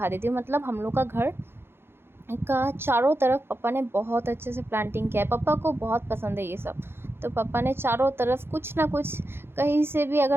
देती हूँ। मतलब हम लोग का घर का चारों तरफ पापा ने बहुत अच्छे से प्लांटिंग किया है। पापा को बहुत पसंद है ये सब। तो पापा ने चारों तरफ कुछ ना कुछ, कहीं से भी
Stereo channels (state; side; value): late; left; 0.11 ms